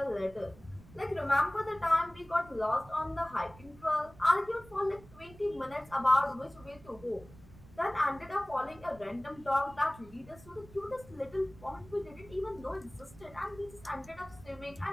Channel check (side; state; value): right; noise; rumble, 21 dB below the sound